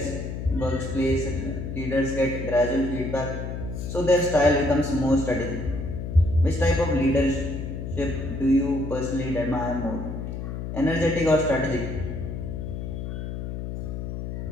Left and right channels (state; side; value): noise; left; hum, 6 dB below the sound